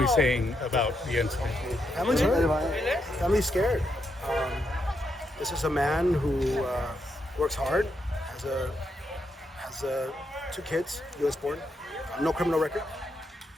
saying about the incident? Family's hurt. Family's scared. This is a man who works hard, has 2 kids, U.S. born, no criminal record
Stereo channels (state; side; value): normal; both; correlation 0.81